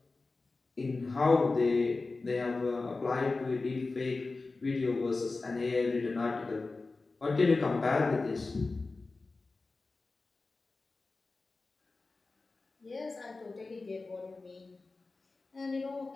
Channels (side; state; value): right; quieter; 3.7 dB